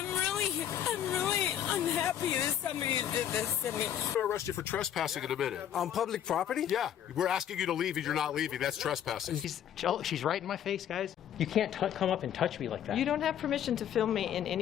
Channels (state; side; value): quieter; right; 10.1 dB